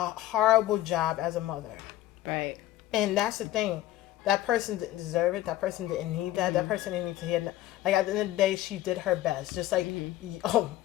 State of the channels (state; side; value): quieter; right; 14.7 dB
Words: horrible job as a mother. Right. And that's the thing. That person didn't deserve it. That person didn't need that. That person didn't need to hear that. Like, at the end of the day, she did her best. Just like, oh,